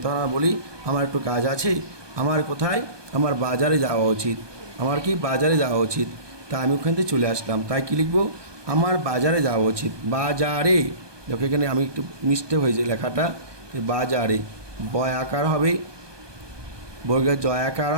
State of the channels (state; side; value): late; left; 1.2 ms